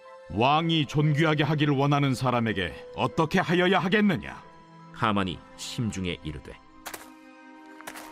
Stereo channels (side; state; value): both; identical; correlation 1.00